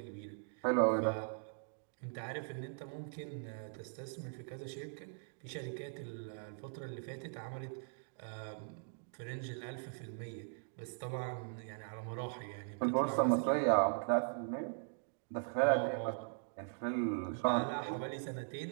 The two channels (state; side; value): silent; left; digital silence